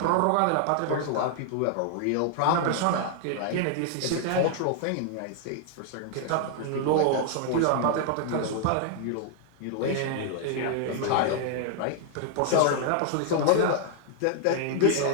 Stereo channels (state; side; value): different; both; correlation 0.00